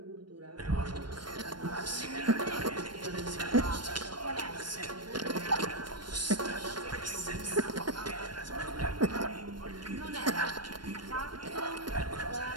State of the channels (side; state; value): left; late; 0.71 ms